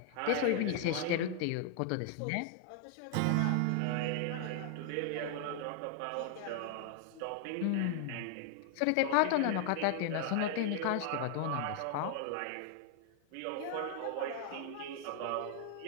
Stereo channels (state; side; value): different; both; correlation 0.00